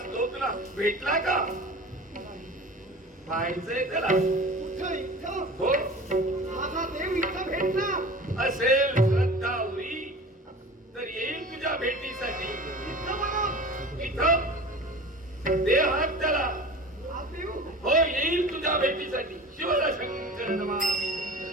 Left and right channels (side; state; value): both; normal; correlation 0.38